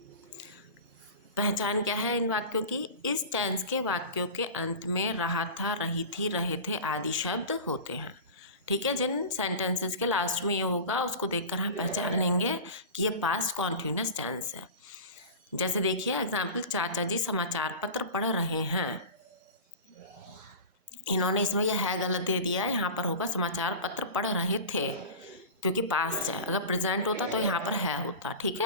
पहचान क्या है इन वाक्यों की? इस टेंस के वाक्यों के अंत में रहा था, रही थी, रहे थे आदि शब्द होते हैं। ठीक है, जिन सेंटेंसेस के लास्ट में ये होगा उसको देखकर हम पहचान लेंगे कि ये पास्ट कॉन्टिन्यूस टेंस है। जैसे देखिए एग्जाम्पल, चाचा जी समाचार पत्र पढ़ रहे हैं। इन्होंने इसमें यह है गलत दे दिया है, यहाँ पर होगा समाचार पत्र पढ़ रहे थे, क्योंकि पास्ट है। अगर प्रेजेंट होता तो यहाँ पर है होता। ठीक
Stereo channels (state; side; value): inverted; both; correlation -0.31